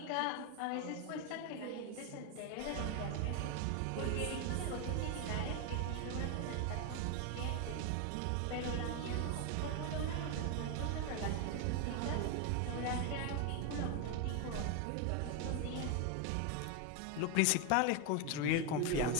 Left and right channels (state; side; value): different; both; correlation 0.01